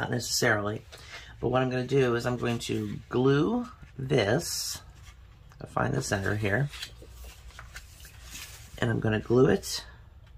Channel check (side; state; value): both; identical; correlation 1.00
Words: necessarily, but what I'm going to do is I'm going to glue this. I'll find the center here, and I'm going to glue it